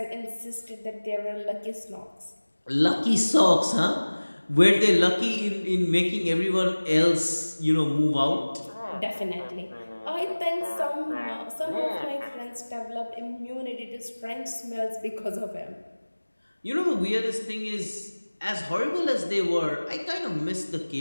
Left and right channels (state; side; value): inverted; both; correlation -1.00